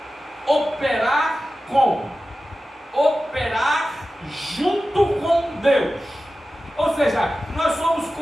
operar junto com Deus. Ou seja, nós somos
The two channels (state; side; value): normal; both; correlation 0.94